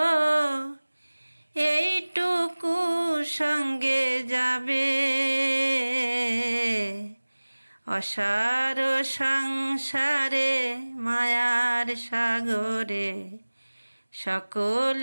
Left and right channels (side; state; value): both; inverted; correlation -1.00